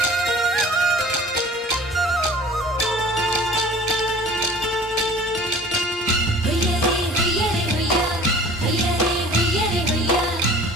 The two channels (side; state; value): both; normal; correlation 0.45